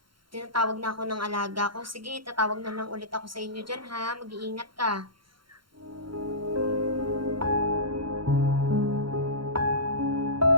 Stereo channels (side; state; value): left; late; 0.73 ms